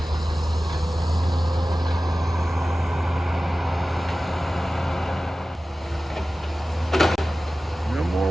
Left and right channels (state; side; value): normal; both; correlation 0.96